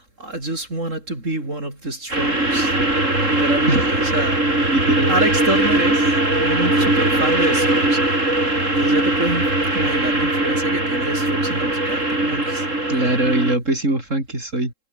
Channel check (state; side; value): late; left; 3.7 ms